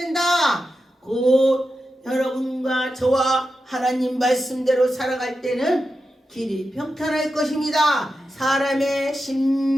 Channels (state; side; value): normal; both; correlation 0.90